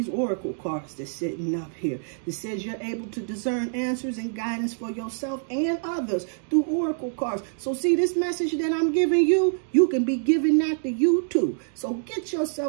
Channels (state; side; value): silent; left; digital silence